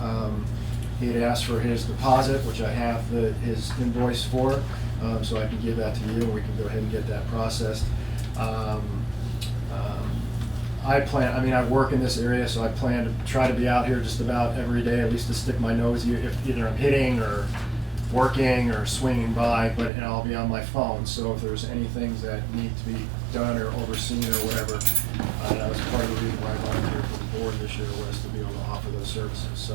He had asked for his deposit, which I have his invoice for, so I can give that to you, and we can go ahead and get that processed. I work in this area, so I plan to try to be out here just about every day, at least to stick my nose, if either I'm hitting or working or swinging by, and I'll be on my phone, so if there's any things that need to be done or overseen or whatever, that was part of the reason why I volunteered for the board this year, was to be able to offer those services. So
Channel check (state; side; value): drops out; left; at 19.9 s